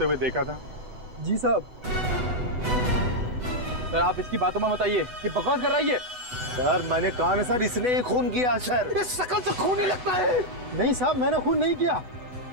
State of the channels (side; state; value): left; late; 8.1 ms